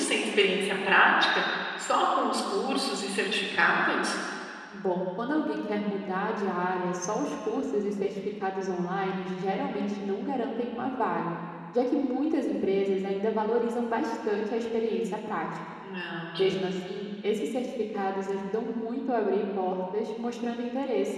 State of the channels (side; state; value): both; identical; correlation 1.00